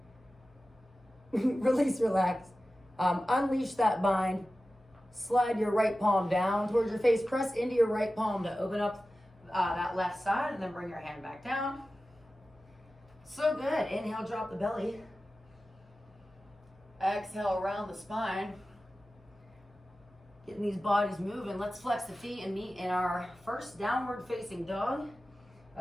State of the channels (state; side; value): normal; both; correlation 0.95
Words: Release, relax. Unleash that bind. Slide your right palm down towards your face. Press into your right palm to open up that left side, and then bring your hand back down. So good. Inhale, drop the belly. Exhale, around the spine. Getting these bodies moving. Let's flex the feet and meet in our first downward facing dog